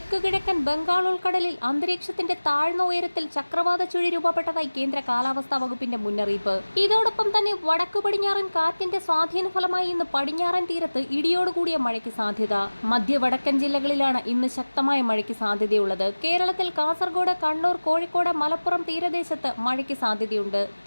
കിഴക്കൻ ബംഗാൾ ഉൾക്കടലിൽ അന്തരീക്ഷത്തിന്റെ താഴ്ന്ന ഉയരത്തിൽ ചക്രവാത ചുഴി രൂപപ്പെട്ടതായി കേന്ദ്ര കാലാവസ്ഥാ വകുപ്പിന്റെ മുന്നറിയിപ്പ്. ഇതോടൊപ്പം തന്നെ വടക്കു പടിഞ്ഞാറൻ കാറ്റിന്റെ സ്വാധീന ഫലമായി ഇന്ന് പടിഞ്ഞാറൻ തീരത്ത് ഇടിയോടുകൂടിയ മഴയ്ക്ക് സാധ്യത. മധ്യ വടക്കൻ ജില്ലകളിലാണ് ഇന്ന് ശക്തമായ മഴയ്ക്ക് സാധ്യതയുള്ളത്. കേരളത്തിൽ കാസർഗോഡ്, കണ്ണൂർ, കോഴിക്കോട്, മലപ്പുറം തീരദേശത്ത് മഴയ്ക്ക് സാധ്യതയുണ്ട്.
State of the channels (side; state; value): both; inverted; correlation -1.00